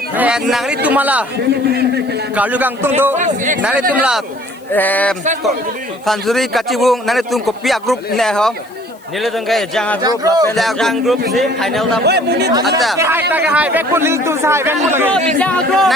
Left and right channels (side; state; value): left; noise; hiss, 29 dB below the sound